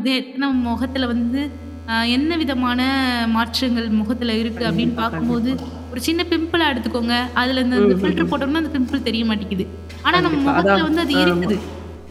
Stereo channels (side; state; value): both; identical; correlation 1.00